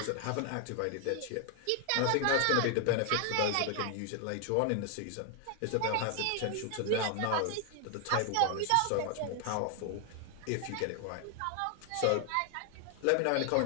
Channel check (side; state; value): both; different; correlation 0.00